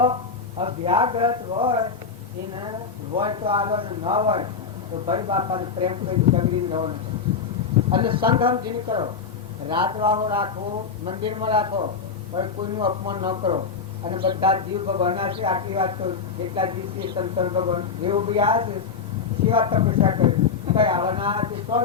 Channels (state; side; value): quieter; right; 5.6 dB